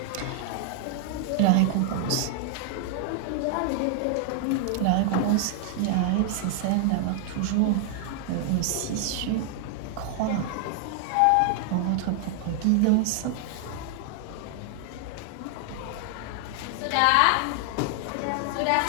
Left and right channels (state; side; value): different; both; correlation 0.00